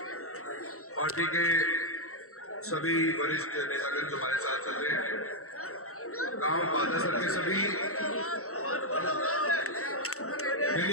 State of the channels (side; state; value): right; late; 0.64 ms